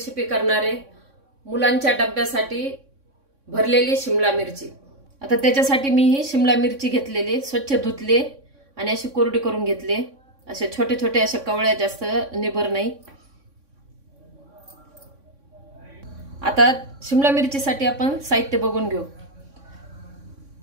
करणार आहे। मुलांच्या डब्यासाठी भरलेली शिमला मिरची। आता त्याच्यासाठी मी ही शिमला मिरची घेतलेली, स्वच्छ धुतले आणि अशी कोरडी करून घेतले। असे छोटे छोटे अशा कवळ्या, जास्त निबर नाही। आता शिमला मिरचीसाठी आपण साहित्य बघून घेऊ।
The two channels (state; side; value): late; left; 3.6 ms